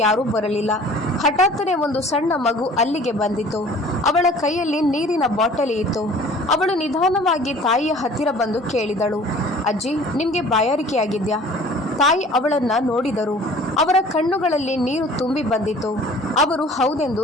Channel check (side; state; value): both; normal; correlation 0.49